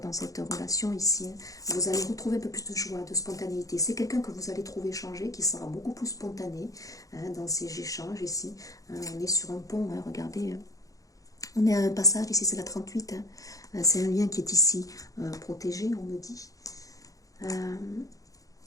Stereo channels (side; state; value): right; late; 0.17 ms